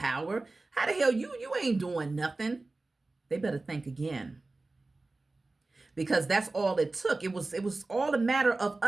How the hell you ain't doing nothing? They better think again. Because that's all it took. It was all a matter of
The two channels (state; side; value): quieter; left; 3.2 dB